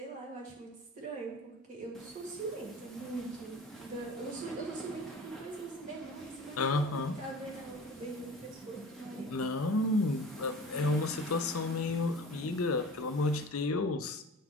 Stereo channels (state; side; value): normal; both; correlation 0.40